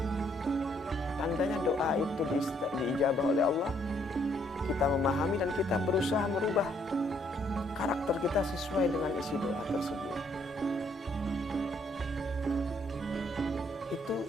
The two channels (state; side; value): normal; both; correlation 0.68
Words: Tandanya doa itu diijabah oleh Allah. Kita memahami dan kita berusaha merubah karakter kita sesuai dengan isi doa tersebut.